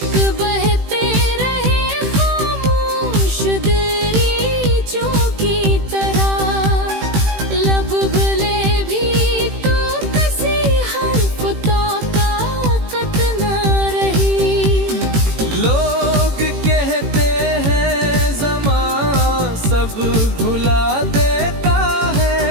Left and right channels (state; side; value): late; left; 18 ms